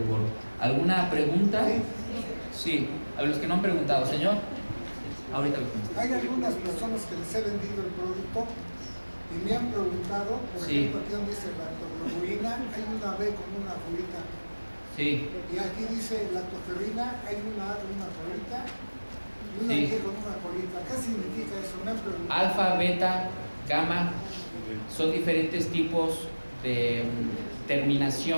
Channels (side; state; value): both; inverted; correlation -1.00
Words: gorro. ¿Alguna pregunta? Sí, a los que no han preguntado, señor. Ahorita lo contesto. Hay algunas personas que les he vendido el producto y me han preguntado, por ejemplo, aquí donde dice lactoglobulina, hay una B con una colita. Sí. Y aquí dice lactoferrina, hay una A con una colita y una G con una colita. ¿Qué significa eso? Me han preguntado. Alfa, beta, gamma son diferentes tipos de